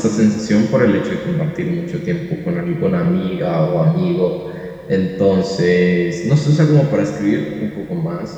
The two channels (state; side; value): identical; both; correlation 1.00